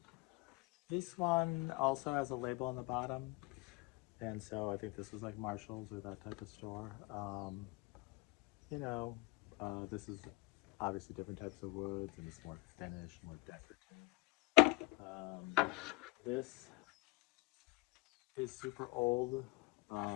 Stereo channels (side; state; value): right; quieter; 24.6 dB